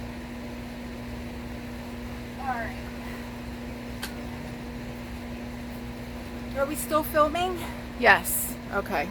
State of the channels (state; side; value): identical; both; correlation 1.00